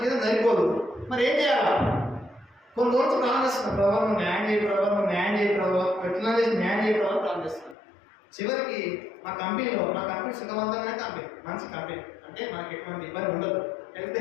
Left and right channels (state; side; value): drops out; right; at 7.8 s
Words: జీతం సరిపోదు. మరి ఏం చేయాలా? కొన్ని రోజులు ప్లాన్ చేస్తున్నాను. ప్రభావ నువ్వు న్యాయం చేయి, ప్రభావ నువ్వు న్యాయం చేయి, ప్రభావ ఎట్లా చేసి న్యాయం చేయి ప్రభావ ప్లాన్ చేస్తున్నాను. చివరికి మా కంపెనీ సుఖవంతమైన కంపెనీ, మంచి కంపెనీ. అంటే మనకి ఎటువంటి ఇబ్బంది ఉండదు, హెల్త్